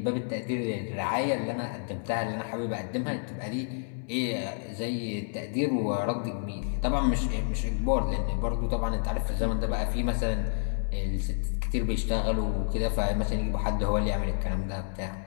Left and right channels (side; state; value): right; silent; 58 dB below the other